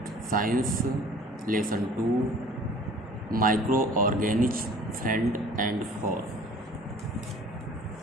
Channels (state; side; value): normal; both; correlation 0.49